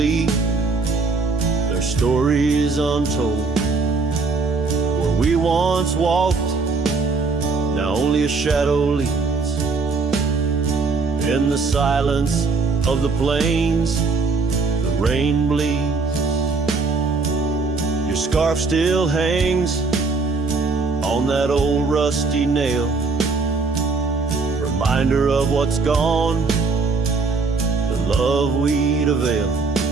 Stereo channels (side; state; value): left; quieter; 4.2 dB